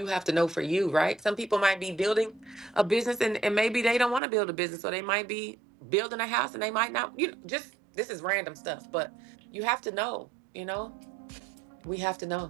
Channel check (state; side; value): drops out; left; at 4.2 s